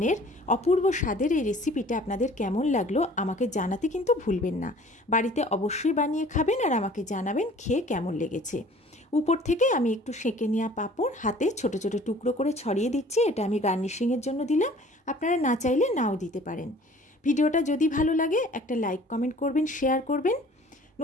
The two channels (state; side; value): normal; both; correlation 0.50